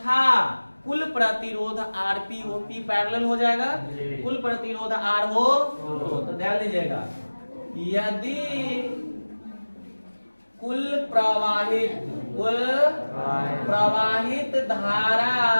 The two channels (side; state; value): both; inverted; correlation -1.00